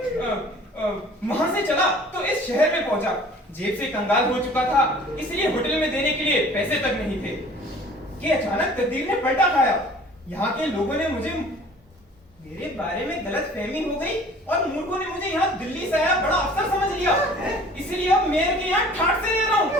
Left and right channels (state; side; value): normal; both; correlation 0.49